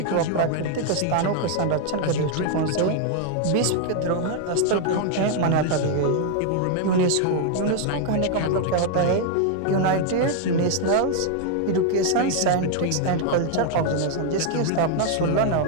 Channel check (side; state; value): both; different; correlation 0.00